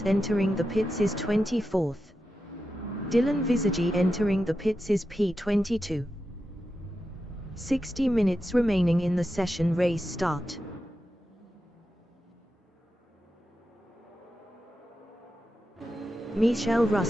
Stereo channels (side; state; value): both; normal; correlation 0.89